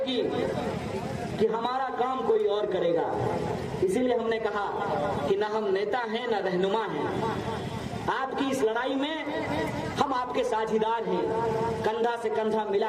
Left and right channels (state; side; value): identical; both; correlation 1.00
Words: कि हमारा काम कोई और करेगा। इसीलिए हमने कहा कि ना हम नेता हैं ना रहनुमा हैं। आपकी इस लड़ाई में हम आपके साझीदार हैं, कंधा से कंधा मिला